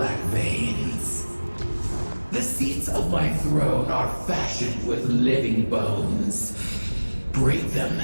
veins. The seats of my throne are fashioned with living bones. Break them,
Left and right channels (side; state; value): both; inverted; correlation -1.00